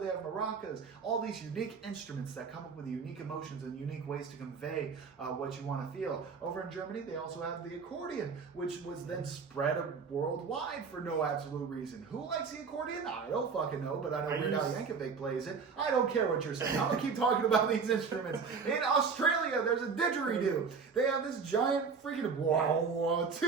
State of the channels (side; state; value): left; quieter; 5.4 dB